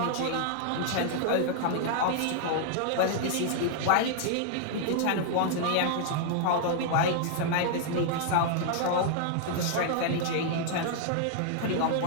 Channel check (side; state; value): both; different; correlation -0.01